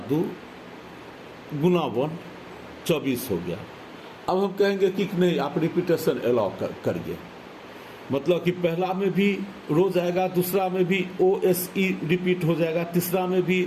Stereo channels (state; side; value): identical; both; correlation 1.00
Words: 2 गुना 1 24 हो गया। अब हम कहेंगे कि नहीं आप रिपीटेशन अलाउ करिए, मतलब कि पहला में भी रोज आएगा, दूसरा में भी OSE रिपीट हो जाएगा, तीसरा में भी